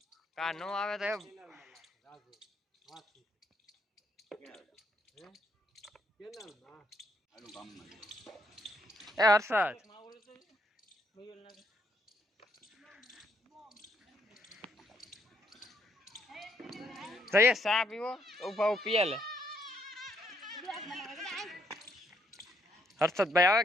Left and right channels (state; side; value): normal; both; correlation 0.72